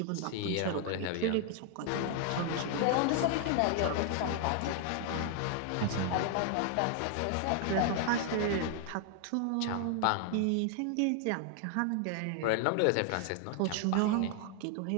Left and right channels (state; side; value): different; both; correlation 0.00